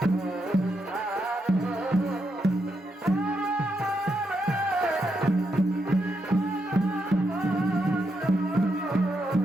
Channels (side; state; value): both; normal; correlation 0.82